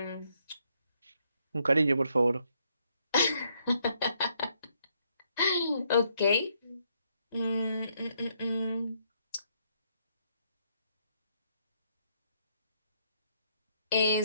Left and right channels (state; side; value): inverted; both; correlation -0.73